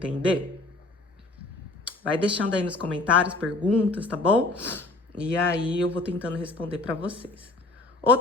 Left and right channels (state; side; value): quieter; right; 3.0 dB